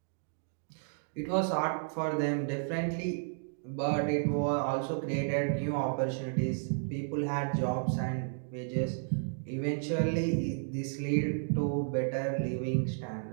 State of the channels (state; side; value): silent; left; digital silence